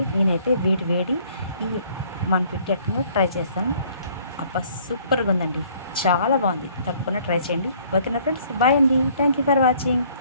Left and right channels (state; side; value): inverted; both; correlation -0.59